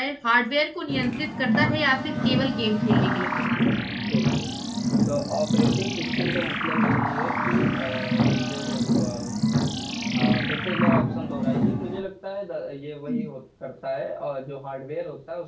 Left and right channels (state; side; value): identical; both; correlation 1.00